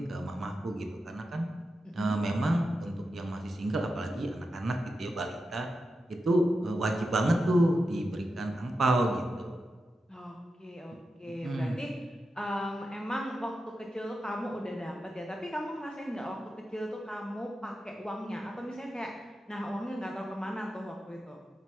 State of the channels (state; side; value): normal; both; correlation 0.89